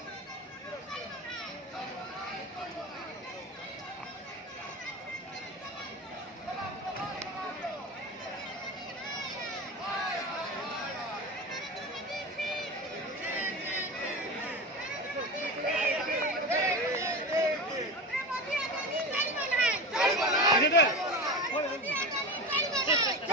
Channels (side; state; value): both; normal; correlation 0.26